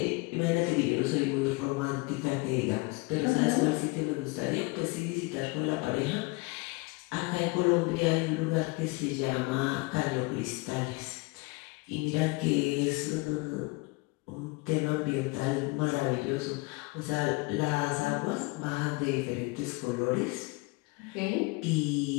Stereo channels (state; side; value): quieter; right; 25.3 dB